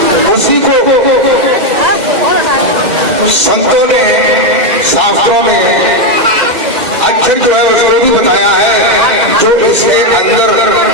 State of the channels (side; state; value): left; late; 2.0 ms